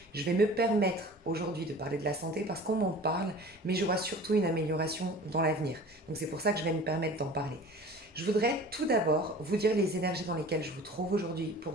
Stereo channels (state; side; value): normal; both; correlation 0.42